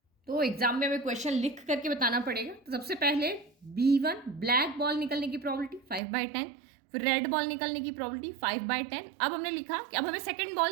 तो एग्जाम में हमें क्वेश्चन लिख करके बताना पड़ेगा। तो सबसे पहले B1 ब्लैक बॉल निकलने की प्रोबेबिलिटी 5/10, फिर रेड बॉल निकलने की प्रोबेबिलिटी 5/10। अब हमने लिखा कि अब हमें सेकंड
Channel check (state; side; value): drops out; left; at 6.0 s